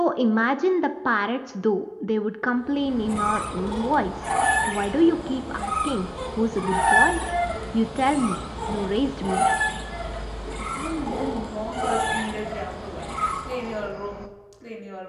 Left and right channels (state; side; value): identical; both; correlation 1.00